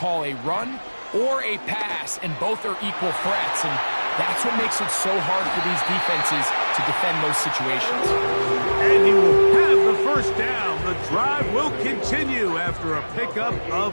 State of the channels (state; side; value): inverted; both; correlation -1.00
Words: a run or a pass, and both are equal threats. And that's what makes it so hard for these defenses to defend those situations. And he will have the first down. The drive will continue after a pickup